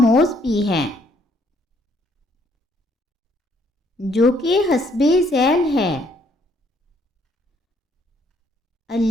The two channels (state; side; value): normal; both; correlation 0.67